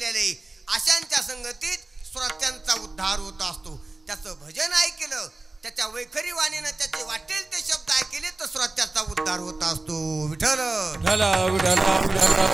अशांच्या संगतीत श्रोत्यांचा उद्धार होत असतो. त्याचं भजन ऐकलं, त्याच्या वैखरी वाणीनं त्याचे वाटेल ते शब्द ऐकले तर श्रोत्याचा उद्धार होत असतो. विठ्ठल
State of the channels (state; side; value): quieter; left; 3.2 dB